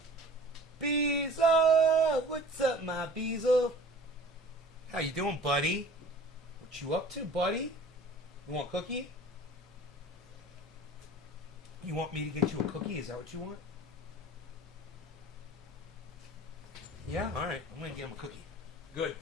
Beezel, what's up, my Beezel? How you doing, buddy? What you up to, buddy? You want a cookie? You want me to get you a cookie? Is that what you want? Yeah? Alright, I'm gonna get him a cookie. Good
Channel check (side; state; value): both; normal; correlation 0.45